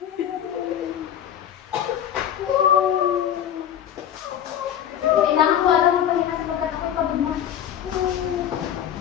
Kailangan ko alam ang pahinga sapagkat ako'y pagod na.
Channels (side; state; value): right; quieter; 10.0 dB